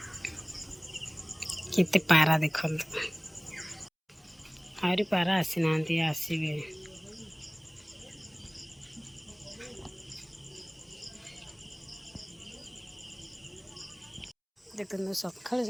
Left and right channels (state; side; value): identical; both; correlation 1.00